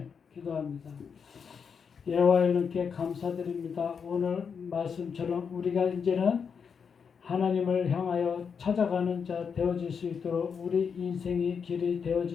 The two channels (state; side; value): quieter; right; 6.4 dB